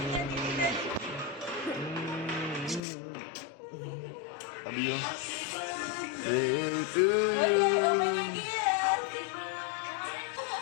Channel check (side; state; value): right; drops out; at 2.8 s